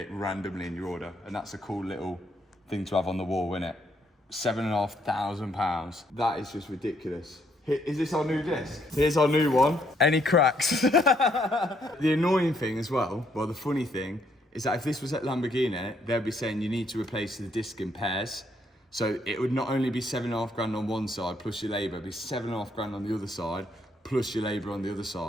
randomly in your order. And that's a cool little thing to have on the wall, isn't it? £7,500. That is just ridiculous. Is this our new disc? Here's our new one. Any cracks? The annoying thing as well, well, the funny thing, is that if this was at Lamborghini, they'd be saying you need to replace the disc in pairs. So it would not only be £7,500 on one side plus your labour, it'd be £7,500 on the other side plus your labour on the other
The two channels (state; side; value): normal; both; correlation 0.71